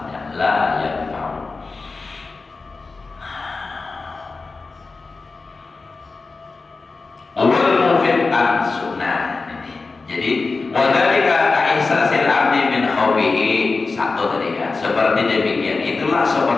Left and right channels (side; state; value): right; quieter; 4.0 dB